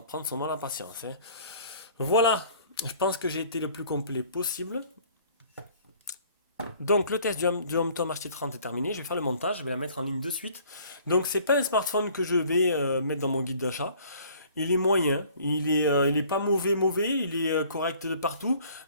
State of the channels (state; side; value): inverted; both; correlation -0.54